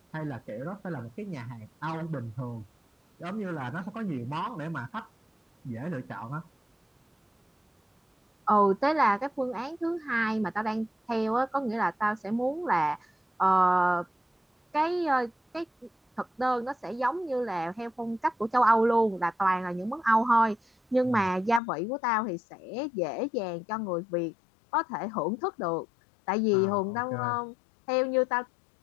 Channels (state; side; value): drops out; right; at 21.6 s